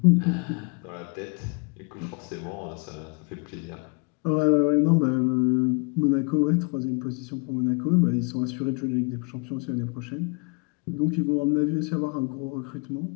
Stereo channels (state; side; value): quieter; right; 32.2 dB